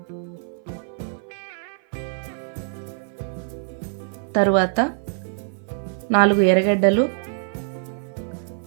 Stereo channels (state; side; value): silent; left; 56 dB below the other